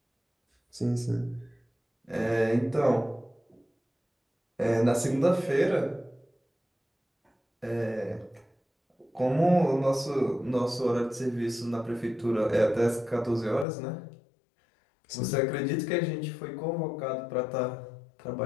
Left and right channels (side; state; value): right; drops out; at 13.7 s